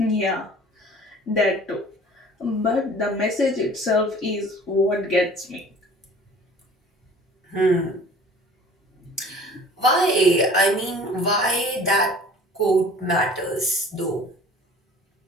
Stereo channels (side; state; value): both; normal; correlation 0.47